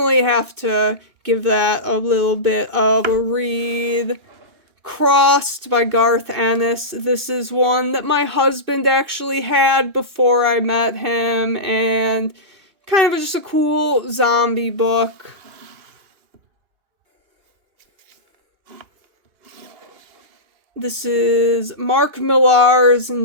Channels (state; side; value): late; left; 2.9 ms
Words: have to give that a little bit of a read. Crossed by Garth Ennis. This is one that my husband actually had before I met him, and kind of just a cool zombie book. This is Mark Millar's